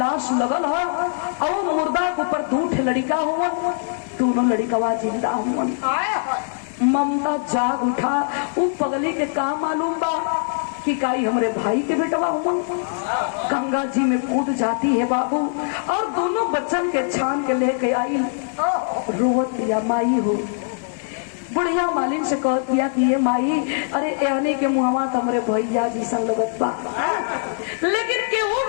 लगल है और मुर्दा के ऊपर 2 लड़का हुआ, दोनों लड़कवा जिंदा हुआ। ममता जाग उठा, वो पगली के का मालूम बा कि काई हमरे भाई के बेटवा हुआ। गंगा जी में कूद जाती है बाबू और दोनों बच्चन के छान के लेके आई। रोवत दिया माई हो, बुढ़िया मालिन से कह दिया कि ये माई अरे एहने के मुहवा तमरे भैया जी संग लगत बा, लेकिन केहू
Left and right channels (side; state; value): right; silent; digital silence